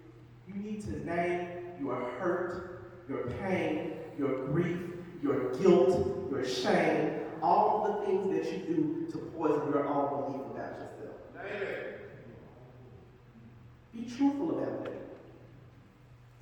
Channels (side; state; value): both; identical; correlation 1.00